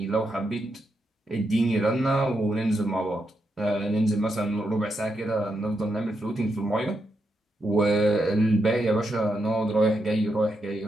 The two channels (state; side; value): normal; both; correlation 0.83